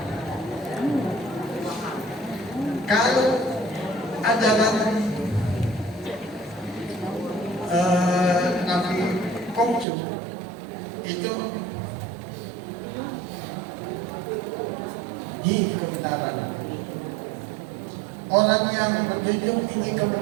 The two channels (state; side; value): drops out; left; at 9.9 s